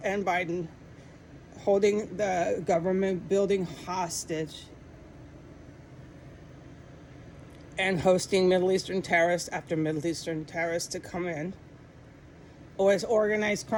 and Biden, holding the government building hostage and hosting Middle Eastern terrorists after Middle Eastern terrorists to come in. Or it's organized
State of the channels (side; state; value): both; identical; correlation 1.00